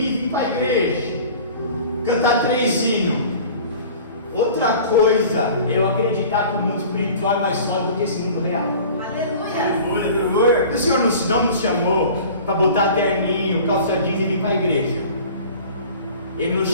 vir para a igreja, cantar 3 hinos. Outra coisa é eu acreditar que o mundo espiritual é mais forte do que esse mundo real. Aleluia. O Senhor não nos chamou para botar terninho, calça jeans e vir para a igreja. Ele nos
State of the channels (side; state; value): both; inverted; correlation -0.43